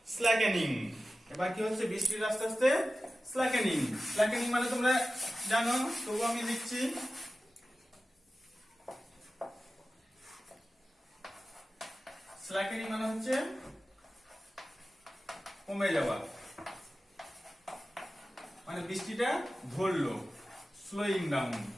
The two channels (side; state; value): both; normal; correlation 0.94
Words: slackening. এবার কি হচ্ছে? বৃষ্টির আস্তে আস্তে স্ল্যাকেনিং। স্ল্যাকেনিং মানে তোমরা জানো, তবু আমি লিখছি। স্ল্যাকেনিং মানে হচ্ছে কমে যাওয়া, মানে বৃষ্টিটা ধরলো, স্লোয়িং ডাউন,